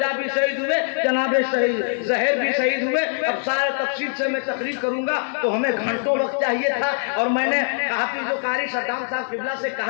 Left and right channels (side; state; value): right; silent; 61 dB below the other